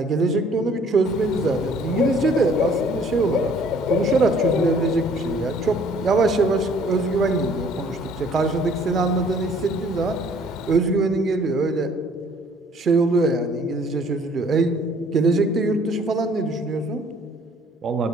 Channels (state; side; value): normal; both; correlation 0.58